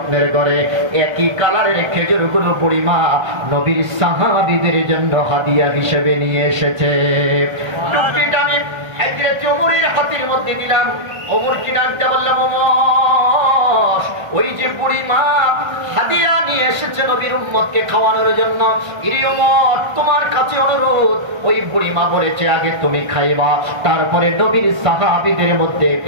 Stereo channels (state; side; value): late; left; 1.3 ms